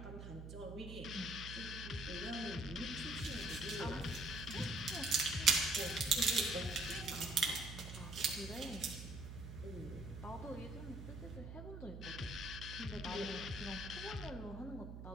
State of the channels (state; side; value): noise; right; hum, 9 dB below the sound